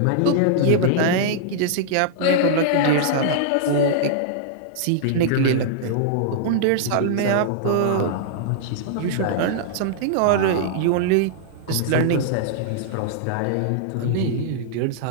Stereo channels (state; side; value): different; both; correlation -0.01